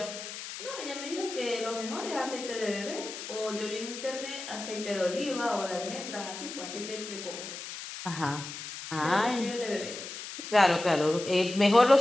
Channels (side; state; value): left; noise; hiss, 9 dB below the sound